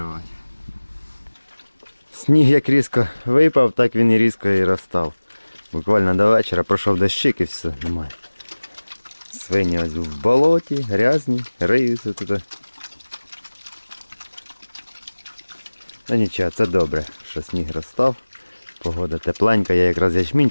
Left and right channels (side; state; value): both; inverted; correlation -1.00